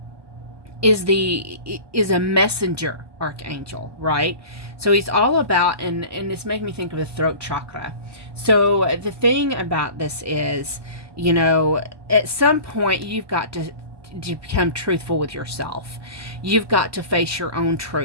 is a messenger archangel, right? So he's all about, and it's making me think of the throat chakra. So the thing about this is, at some point you've got to become truthful with yourself. You've got to face your own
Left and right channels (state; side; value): late; left; 1.2 ms